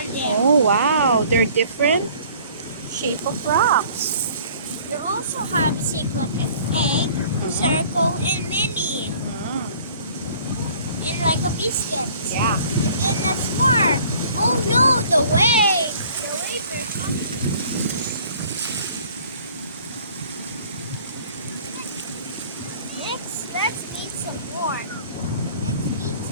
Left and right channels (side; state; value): both; inverted; correlation -0.53